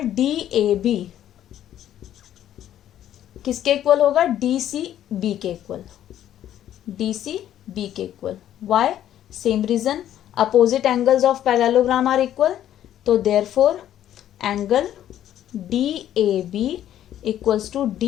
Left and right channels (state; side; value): quieter; right; 11.4 dB